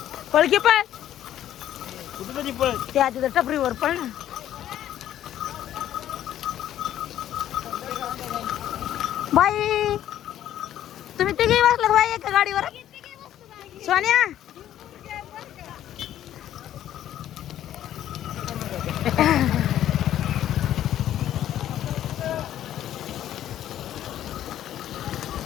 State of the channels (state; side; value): quieter; right; 11.8 dB